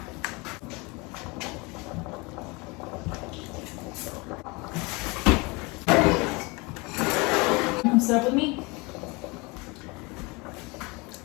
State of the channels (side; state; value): right; quieter; 26.8 dB